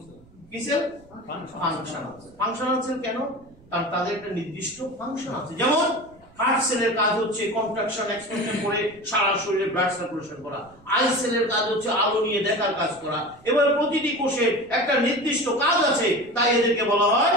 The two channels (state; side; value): noise; right; rumble, 26 dB below the sound